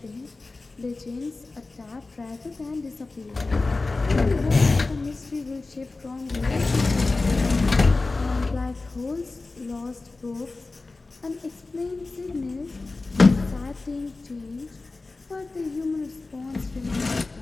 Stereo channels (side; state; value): right; quieter; 3.5 dB